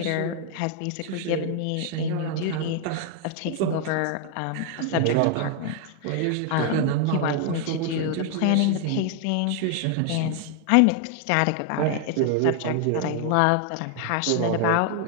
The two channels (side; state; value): both; different; correlation 0.00